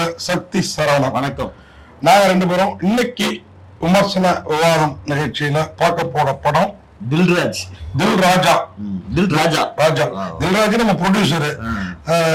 சக்தி சரவணன். வணக்கம். நாங்க ரெண்டு பேரும் இன்னைக்கு விமர்சன விவாதம் நிகழ்ச்சியில பார்க்க போற படம் தில்ராஜ். தில்ராஜ் நம்ம ப்ரொடியூசரு.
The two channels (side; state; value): both; identical; correlation 1.00